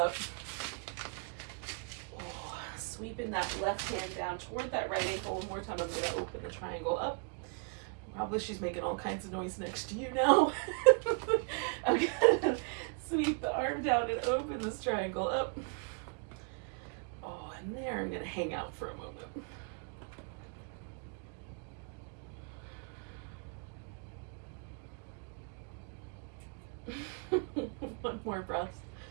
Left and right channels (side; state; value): left; quieter; 38.5 dB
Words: Oh, sweeping that left hand down toward that right ankle. One more time, I'm going to open the triangle up. Probably she's making all kinds of noise next to you now. I'm going to sweep the arm down and open this triangle up. Oh, and there I'm going to hang out for a moment. One more breath.